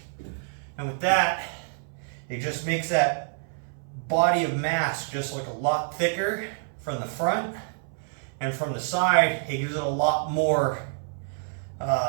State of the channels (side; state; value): left; silent; 60 dB below the other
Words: And with that, it just makes that body of mass just look a lot thicker from the front, and from the side, it gives it a lot more